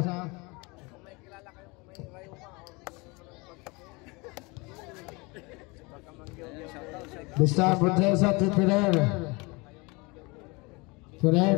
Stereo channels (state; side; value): quieter; right; 26.6 dB